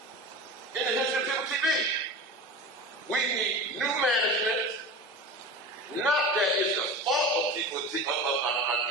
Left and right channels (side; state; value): both; normal; correlation 0.31